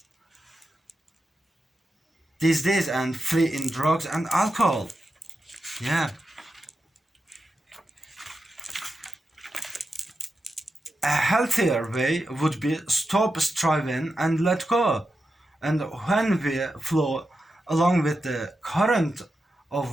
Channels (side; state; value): both; normal; correlation 0.89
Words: these days and flee in drugs and alcohol. Yeah. A healthier way would be stop striving and let go. And when we flow along with the current of